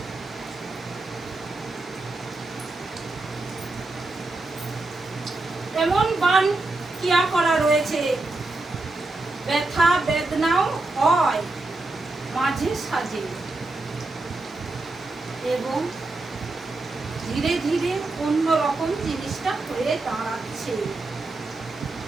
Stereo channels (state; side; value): quieter; left; 3.2 dB